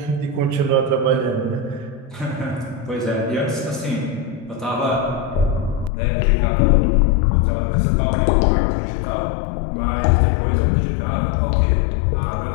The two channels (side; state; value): right; drops out; at 5.9 s